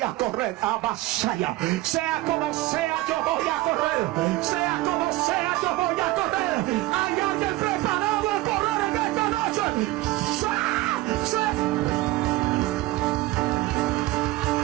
correr a Basaya. Sea como sea, yo voy a correr. Sea como sea, yo voy a correr. Hay alguien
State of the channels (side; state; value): left; quieter; 18.2 dB